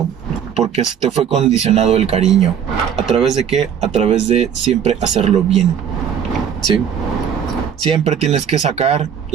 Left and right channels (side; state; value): left; quieter; 8.4 dB